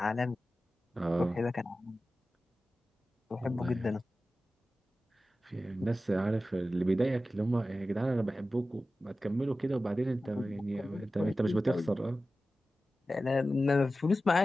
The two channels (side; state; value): both; normal; correlation 0.94